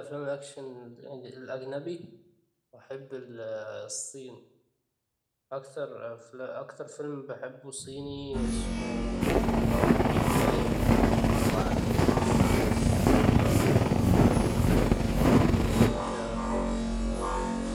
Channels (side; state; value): both; identical; correlation 1.00